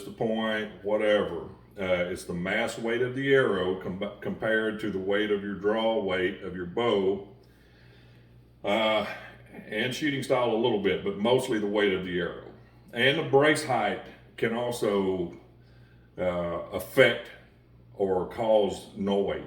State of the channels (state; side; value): identical; both; correlation 1.00